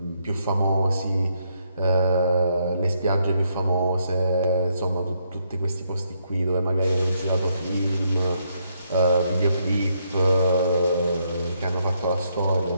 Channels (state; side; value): inverted; both; correlation -0.75